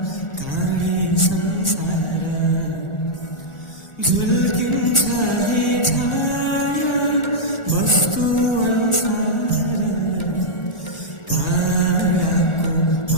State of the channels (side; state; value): right; late; 1.4 ms